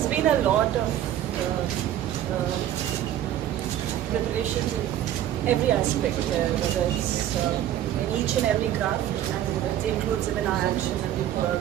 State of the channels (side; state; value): left; quieter; 11.8 dB